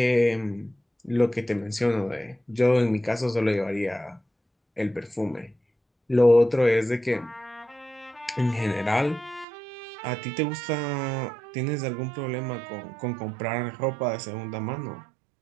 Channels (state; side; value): drops out; left; at 9.5 s